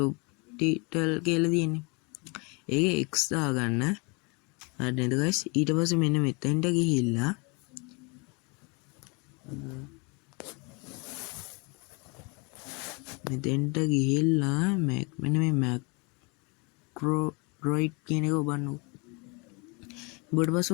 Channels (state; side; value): quieter; right; 30.6 dB